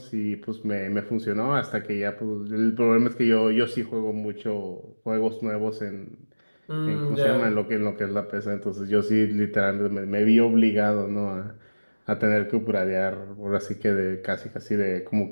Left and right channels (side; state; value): both; inverted; correlation -1.00